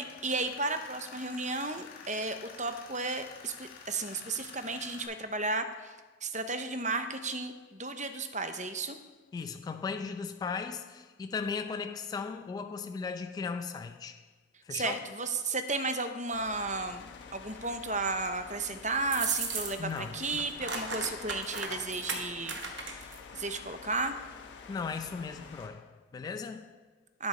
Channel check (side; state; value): both; normal; correlation -0.03